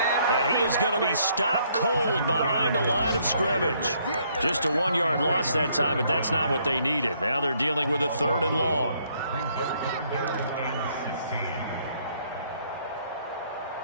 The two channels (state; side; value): inverted; both; correlation -0.68